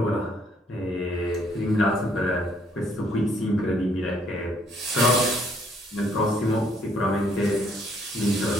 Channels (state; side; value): normal; both; correlation 0.66